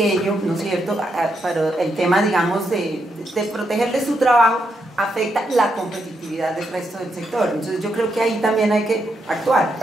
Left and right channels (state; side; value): normal; both; correlation 0.81